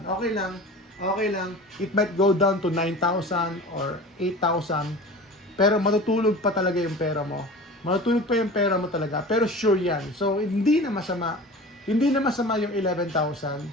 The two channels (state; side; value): normal; both; correlation 0.37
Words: Okay lang. It might go down to 9,000 or 8,000. Pero matutulog pa talaga yung pera mo. Talaga. Pero sure yan. So, hindi na masama yung